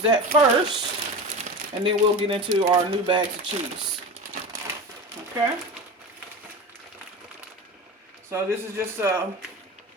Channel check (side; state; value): both; normal; correlation 0.28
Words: that first, and then we'll get into our new bags of cheese. Okay. So this is just